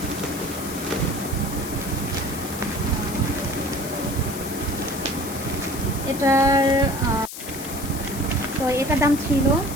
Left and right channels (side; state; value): left; noise; hiss, 10 dB below the sound